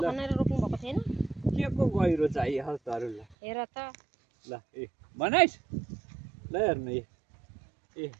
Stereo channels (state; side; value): drops out; left; at 3.4 s